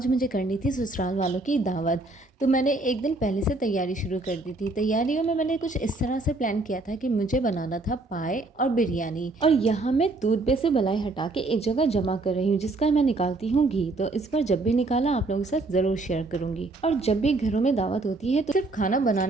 मुझे करनी थी ससुराल वालों की दावत। तो मैंने एक दिन पहले से तैयारी शुरू कर दी थी। तैयारियों में मैंने कुछ इस तरह से प्लान किया था कि मुझे बनाना था पाए और बिरयानी। और यहाँ मैं दूध से बलाई हटा के एक जगह जमा कर रही हूँ, जिसका मैं निकालती हूँ घी। तो इस बार जब भी निकाला आप लोगों के साथ ज़रूर शेयर करूँगी। और जब भी घरों में दावत होती है तो सिर्फ खाना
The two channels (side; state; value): left; quieter; 3.1 dB